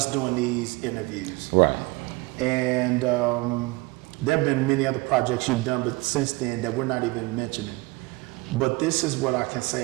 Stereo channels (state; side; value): quieter; left; 23.7 dB